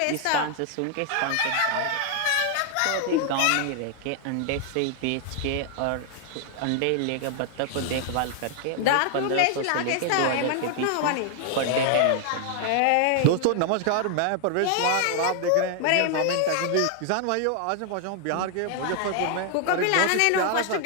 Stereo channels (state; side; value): different; both; correlation 0.00